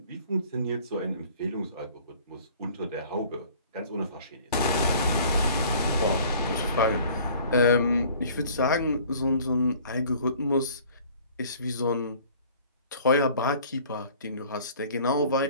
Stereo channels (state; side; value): inverted; both; correlation -0.51